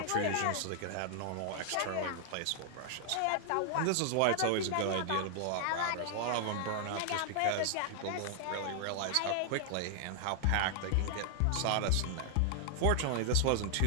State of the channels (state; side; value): different; both; correlation 0.00